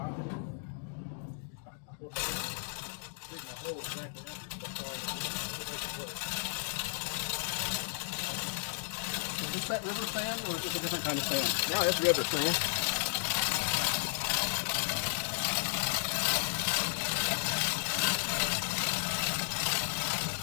Digging a hole exactly Is this that river sand or is it a different kind of sand? No, it's river sand.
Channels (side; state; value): right; silent; digital silence